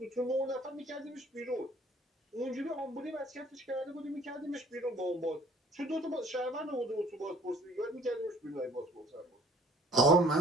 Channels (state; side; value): normal; both; correlation 0.55